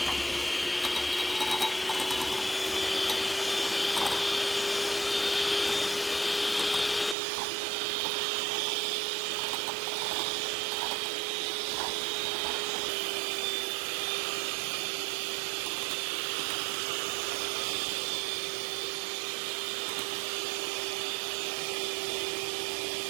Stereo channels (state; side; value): drops out; left; at 7.2 s